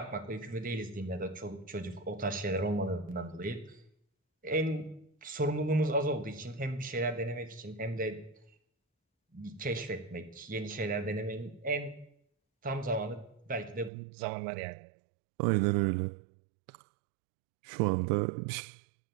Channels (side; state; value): left; drops out; at 13.9 s